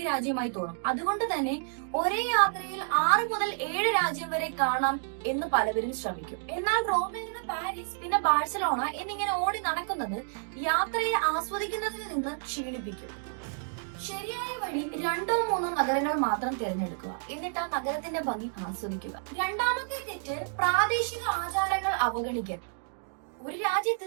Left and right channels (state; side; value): silent; left; digital silence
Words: രാജ്യമായി തോന്നും. അതുകൊണ്ട് തന്നെ ഒരേ യാത്രയിൽ 6 മുതൽ 7 രാജ്യം വരെ കാണാം എന്ന് പലവരും ശ്രമിക്കും. എന്നാൽ റോമിൽ നിന്ന് പാരീസ്, പിന്നെ ബാഴ്സലോണ എന്നിങ്ങനെ ഓടി നടക്കുന്നത് യാത്രയെ ആസ്വദിക്കുന്നതിൽ നിന്ന് ക്ഷീണിപ്പിക്കും. ശരിയായ വഴി 2-3 നഗരങ്ങൾ മാത്രം തിരഞ്ഞെടുക്കുക. എന്നിട്ട് ആ നഗരത്തിന്റെ ഭംഗി ആസ്വദിക്കുക. രണ്ടാമത്തെ തെറ്റ് പ്രാദേശിക ആചാരങ്ങൾ അവഗണിക്കൽ. ഒരു രാജ്യത്ത്